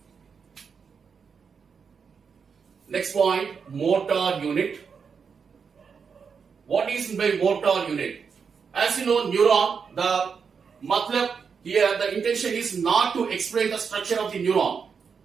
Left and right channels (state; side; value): quieter; left; 6.0 dB